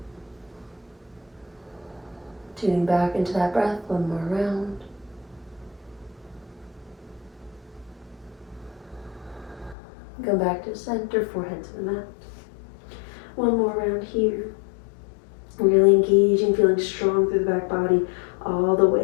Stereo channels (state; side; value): drops out; right; at 9.8 s